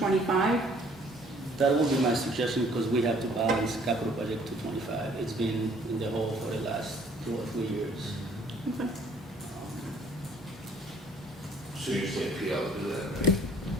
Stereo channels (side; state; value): both; normal; correlation 0.58